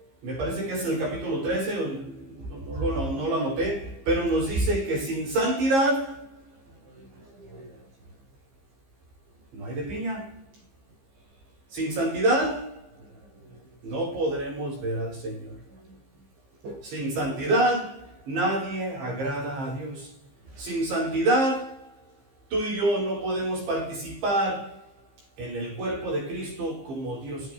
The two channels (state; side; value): late; left; 15 ms